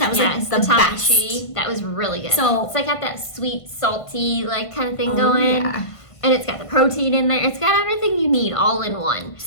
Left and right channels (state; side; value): late; right; 1.5 ms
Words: was the best. That was really good. So it's got that sweet, salty kind of thing going. Yeah. And it's got the protein in there. It's got everything you need all in one.